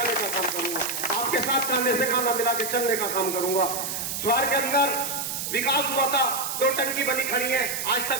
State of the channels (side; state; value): right; noise; hiss, 4 dB below the sound